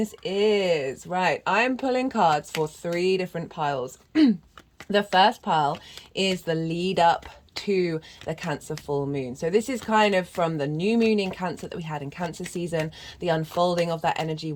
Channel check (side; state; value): both; identical; correlation 1.00